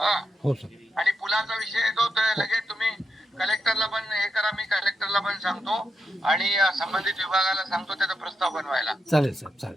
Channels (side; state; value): both; normal; correlation 0.84